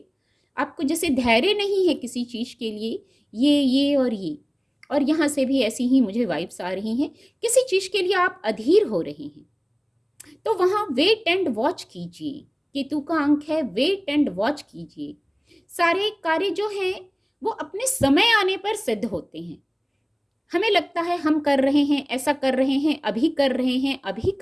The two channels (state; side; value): identical; both; correlation 1.00